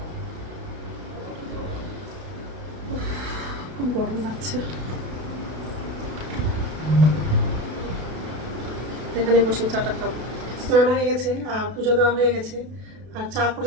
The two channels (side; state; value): left; late; 32 ms